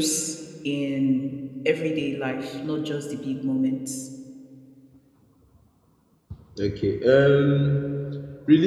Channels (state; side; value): identical; both; correlation 1.00